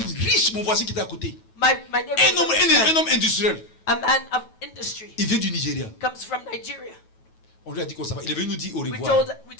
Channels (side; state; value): right; late; 9.2 ms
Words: riche, mon voisin qui était à côté. My neighbor Un was homme, a rich un man, homme industriel. a man of industry, Il vient du Nigeria. comes from Nigeria. On lui a dit qu'on s'en va. Il est venu nous dire au We revoir. told